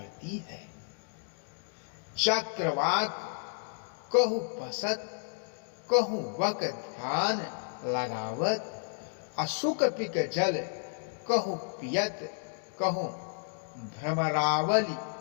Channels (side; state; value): right; silent; digital silence